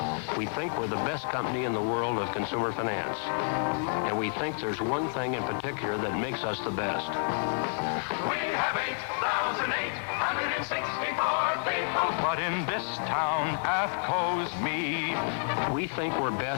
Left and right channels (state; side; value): silent; right; 58 dB below the other